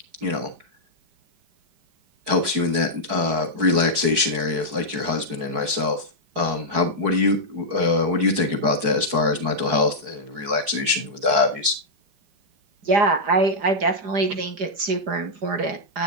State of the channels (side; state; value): left; late; 4.6 ms